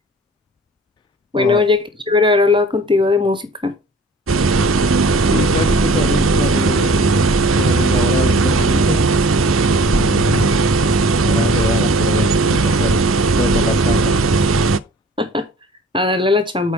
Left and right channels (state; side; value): normal; both; correlation 0.48